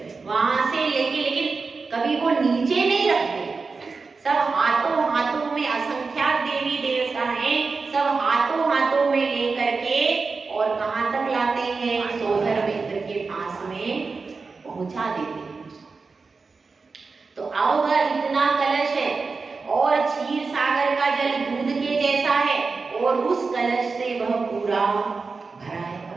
वहां से लेके, लेकिन कभी वो नीचे नहीं रखते, सब हाथों में असंख्यात देवी देवता हैं, सब हाथों में लेकर के और कहाँ तक लाते हैं? सोधर मित्र के पास में पहुंचा देते हैं। तो अब इतना कलश है, और क्षीर सागर का जल दूध के जैसा है, और उस कलश से वह पूरा भरा है।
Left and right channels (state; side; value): quieter; left; 4.4 dB